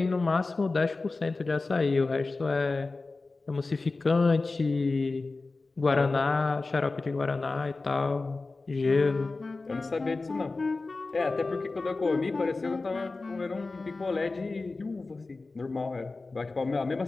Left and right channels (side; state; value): right; quieter; 3.6 dB